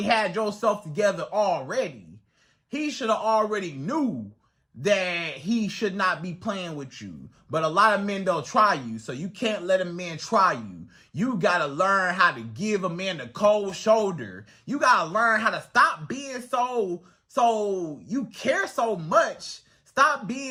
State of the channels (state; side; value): identical; both; correlation 1.00